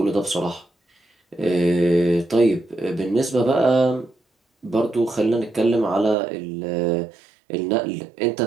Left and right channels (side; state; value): left; drops out; at 6.2 s